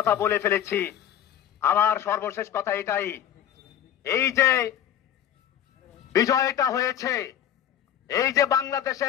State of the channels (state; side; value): quieter; right; 10.4 dB